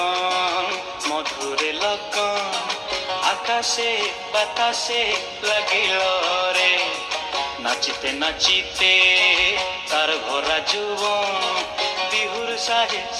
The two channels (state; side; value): identical; both; correlation 1.00